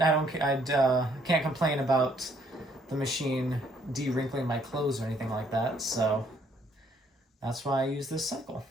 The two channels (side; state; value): both; normal; correlation 0.66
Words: can't complain about the machine de-wrinkling my clothes or anything like that, so that's why I use this cycle.